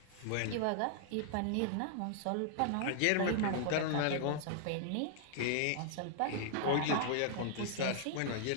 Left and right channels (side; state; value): both; different; correlation -0.01